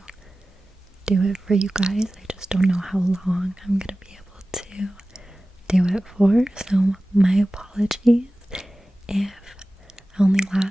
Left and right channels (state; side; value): normal; both; correlation 0.96